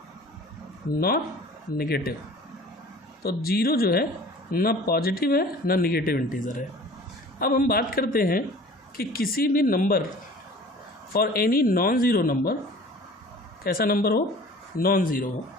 not negative. तो ज़ीरो जो है ना पॉजिटिव है ना नेगेटिव इंटीजर है. अब हम बात करते हैं कि किसी भी number for any non zero number, कैसा नंबर हो, नॉन ज़ीरो हो.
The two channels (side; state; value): both; normal; correlation 0.45